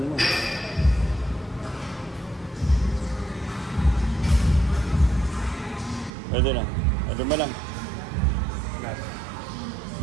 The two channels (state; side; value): drops out; left; at 6.1 s